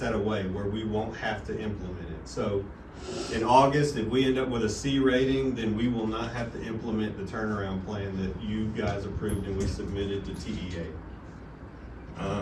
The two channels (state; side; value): identical; both; correlation 1.00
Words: away, where we won't have to implement it. So in August, if we end up with a C rating, then we will not have to implement the turnaround plan that you guys approved and we submitted to TEA.